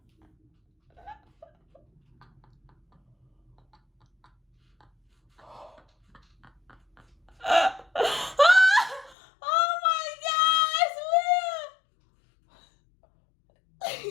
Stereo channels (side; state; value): right; drops out; at 9.2 s